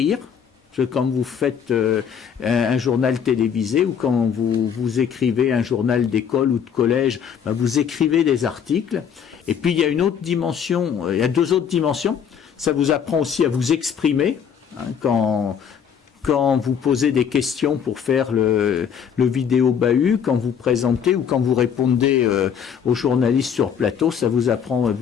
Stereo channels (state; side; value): quieter; right; 7.7 dB